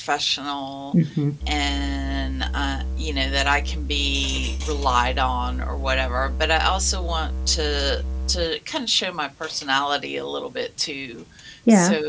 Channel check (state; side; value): identical; both; correlation 1.00